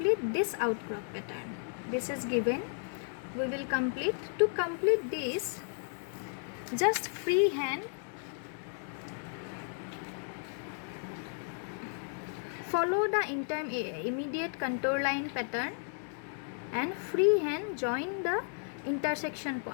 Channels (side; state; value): right; silent; 55 dB below the other